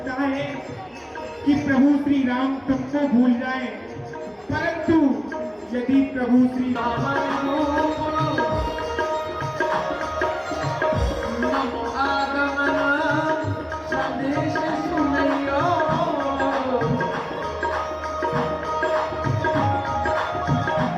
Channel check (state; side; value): identical; both; correlation 1.00